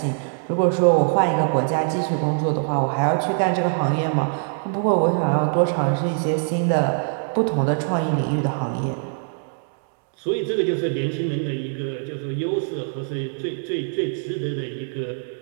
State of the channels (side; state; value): left; silent; 63 dB below the other